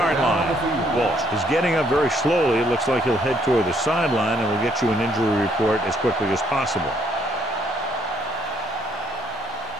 line. Walsh is getting up very slowly. It looks like he'll head toward the sideline, and we'll get you an injury report as quickly as possible.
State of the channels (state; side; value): normal; both; correlation 0.68